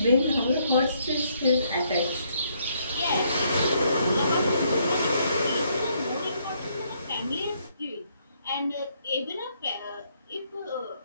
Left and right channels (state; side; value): inverted; both; correlation -0.71